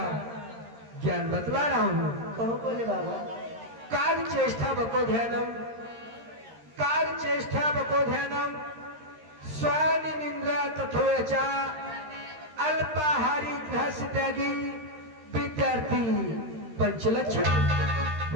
ज्ञान बतला रहा हूँ। कहो भोले बाबा। कार्य चेष्टा बको ध्यानम, कार्य चेष्टा बको ध्यानम, स्वानि निंद्रा तथोयचा, अल्पाहारी ग्रहस्य त्यागी विद्यार्थी पंचलक्षण।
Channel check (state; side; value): late; left; 13 ms